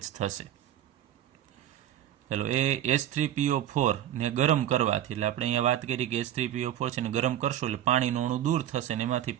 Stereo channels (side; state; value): left; quieter; 11.4 dB